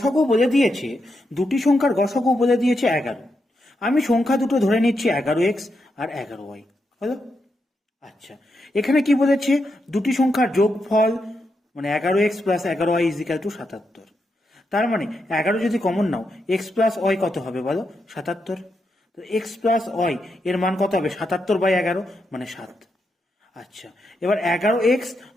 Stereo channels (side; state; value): both; normal; correlation 0.84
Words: বলে দিয়েছে, দুটি সংখ্যার গসাগু বলে দিয়েছে 11। আমি সংখ্যা দুটো ধরে নিচ্ছি 11x আর 11y। হলো? আচ্ছা, এখানে কি বলেছে? দুটি সংখ্যার যোগফল মানে 11x plus 11y is equal to 77। তার মানে 11 যদি কমন নাও, x প্লাস ওয়াই কত হবে বলো? 77। তো x প্লাস ওয়াই এর মান কত হবে? 77/11 মানে 7। আচ্ছা, এবার 11x